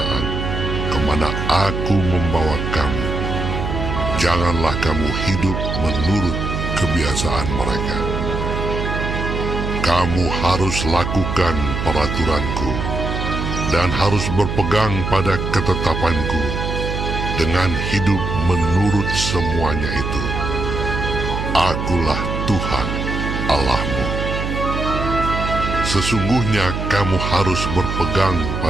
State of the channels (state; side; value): noise; right; hum, 3 dB below the sound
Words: kemana aku membawa kamu. Janganlah kamu hidup menurut kebiasaan mereka. Kamu harus lakukan peraturanku, dan harus berpegang pada ketetapanku, dengan hidup menurut semuanya itu. Akulah Tuhan Allahmu. Sesungguhnya kamu harus berpegang